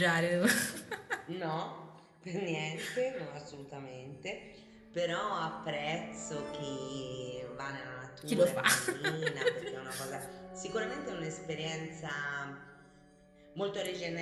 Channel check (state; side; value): identical; both; correlation 1.00